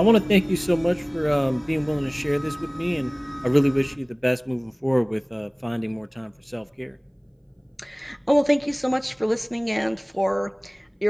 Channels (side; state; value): both; identical; correlation 1.00